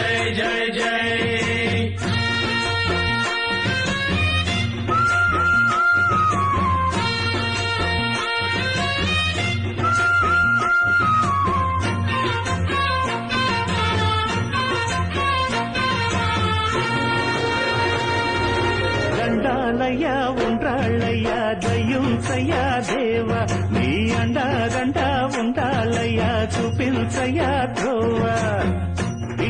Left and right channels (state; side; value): identical; both; correlation 1.00